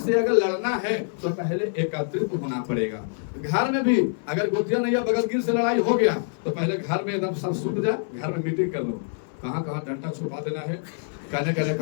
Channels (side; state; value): right; silent; 61 dB below the other